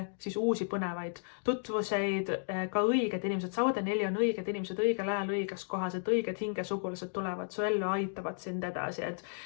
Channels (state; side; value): silent; right; digital silence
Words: siis uusi põnevaid tutvuseid, ka õiged inimesed. Sauade 4 on õiged inimesed õigel ajal õiges kohas, et õiged hingesugulased tulevad su ellu, aitavad sind edasi,